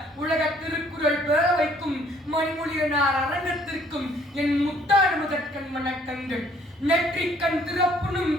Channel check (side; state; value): both; normal; correlation 0.62